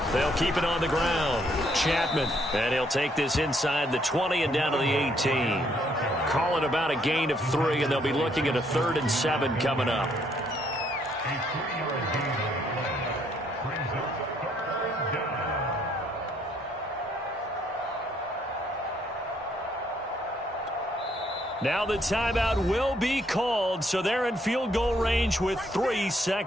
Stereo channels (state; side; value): normal; both; correlation 0.69